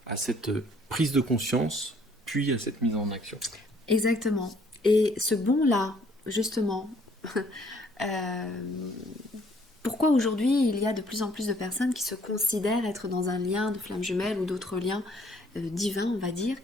prise de conscience, puis à cette mise en action. Exactement. Et ce bon-là, justement, pourquoi aujourd'hui il y a de plus en plus de personnes qui se considèrent être dans un lien de flamme jumelle ou d'autres liens divins, on va dire?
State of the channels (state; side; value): normal; both; correlation 0.62